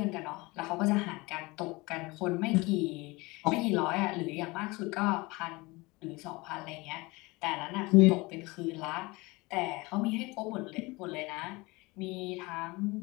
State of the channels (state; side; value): quieter; right; 23.7 dB